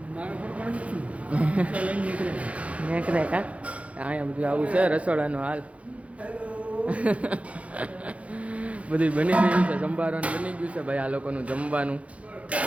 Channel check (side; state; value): left; late; 0.064 ms